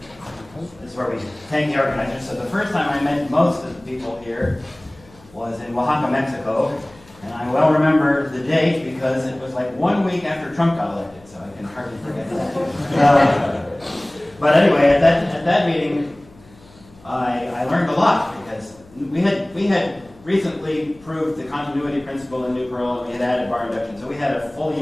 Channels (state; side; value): noise; left; hum, 26 dB below the sound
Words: this is where we thank the organizers. So the first time I met most of the people here was in Oaxaca, Mexico. And I well remember the date because it was like 1 week after Trump got elected, so I can hardly forget that. But anyway, at that meeting, I learned a lot because we had recently proved the continuity principle in Nuprl, and we had added bar induction, so we had a fully